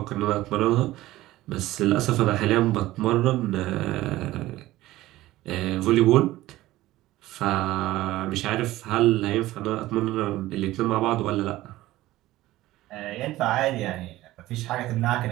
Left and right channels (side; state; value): left; quieter; 16.5 dB